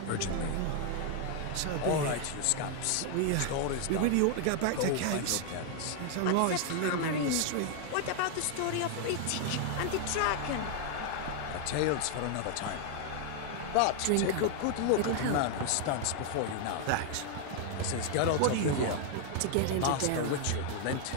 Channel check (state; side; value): different; both; correlation 0.00